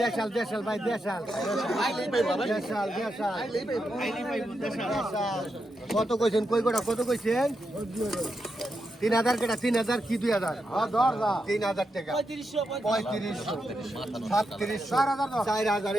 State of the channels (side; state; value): both; normal; correlation 0.85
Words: দেশাল দেশাল ভাই দেশাল দেশাল দেশাল কত কইছেন কই গোটা কত কইছেন 3000 কেটা 3000 কি 2000 হ্যাঁ 3000 টাকা 3500